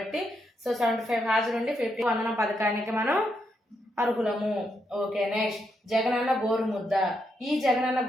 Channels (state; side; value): normal; both; correlation 0.80